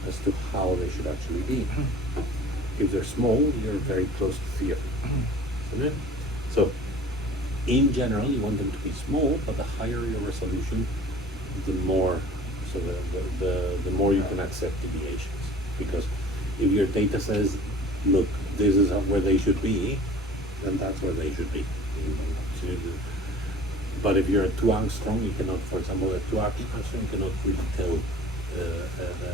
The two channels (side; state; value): both; normal; correlation 0.45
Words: as to how they should actually be. If they're small, you're very close to theory. Okay? So, in general, you want them to be small, but the higher your resolution, the more, so the more you can accept deviations. Because if your data says, look, this is where they should be, then that's where they should be. But if you're at 2 angstrom, you cannot, for example, at 2 angstrom, you cannot really tell